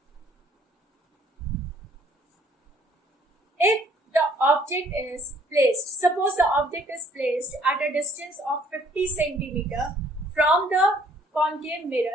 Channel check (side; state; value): both; normal; correlation 0.62